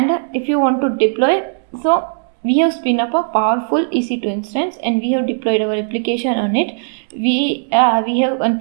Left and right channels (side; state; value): left; silent; digital silence